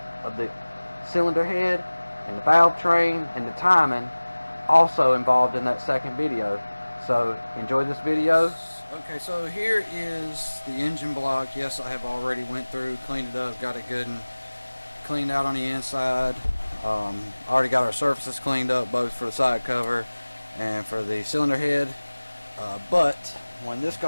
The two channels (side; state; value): both; inverted; correlation -1.00